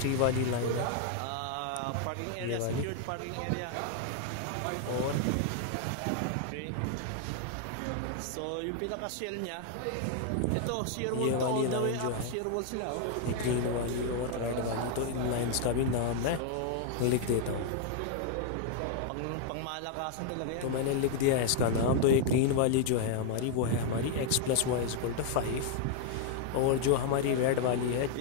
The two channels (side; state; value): both; different; correlation 0.00